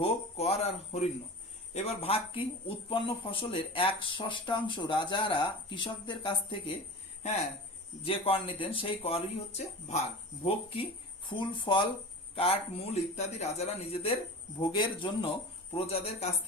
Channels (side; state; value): both; normal; correlation 0.34